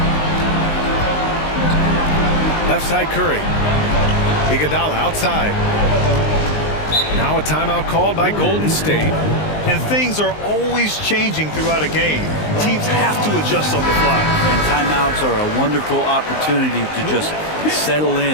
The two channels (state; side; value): late; right; 19 ms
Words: Left side Curry. Iguodala outside. Now a timeout called by Golden State. And things are always changing throughout a game. Teams have to adjust on the fly. And timeouts are a wonderful opportunity to just settle